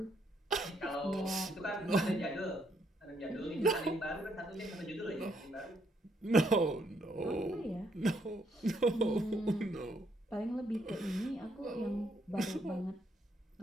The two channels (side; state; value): both; normal; correlation 0.73